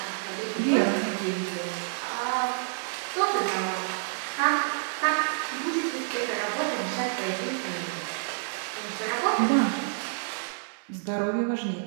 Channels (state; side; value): silent; left; 59 dB below the other